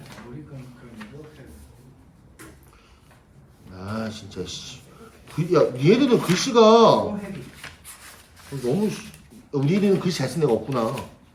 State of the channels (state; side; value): identical; both; correlation 1.00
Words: 아 진짜 씨. 야 얘들은 글씨가 너무 우리 애들은 글씨 잘 쓰는 애가 없구나.